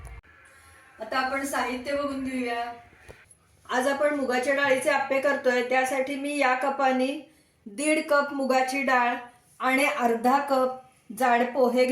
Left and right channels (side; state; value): both; identical; correlation 1.00